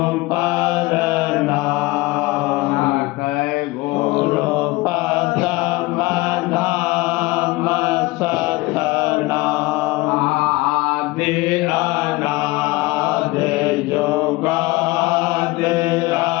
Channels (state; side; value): quieter; right; 21.5 dB